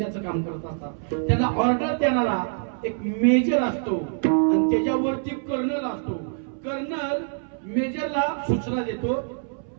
काम करत असतात, त्यांना ऑर्डर देणारा एक मेजर असतो आणि त्याच्यावरती कर्नल असतो. कर्नल मेजरला सूचना देतो,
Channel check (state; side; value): silent; left; 62 dB below the other